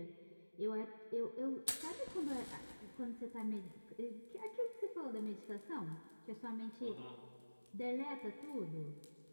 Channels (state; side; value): inverted; both; correlation -1.00